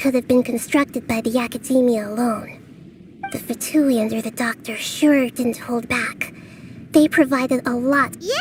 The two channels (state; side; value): identical; both; correlation 1.00